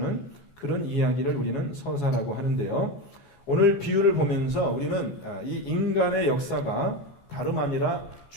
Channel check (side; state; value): right; late; 14 ms